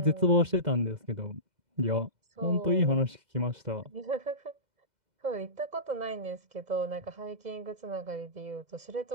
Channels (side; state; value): left; late; 2.0 ms